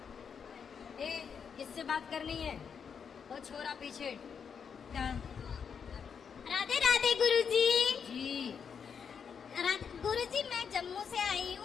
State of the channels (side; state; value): right; quieter; 6.8 dB